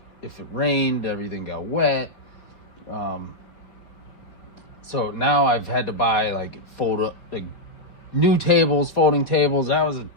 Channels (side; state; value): right; late; 4.2 ms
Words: if it rained, everything got wet. So now I've had to buy like new tables, folding tables. That was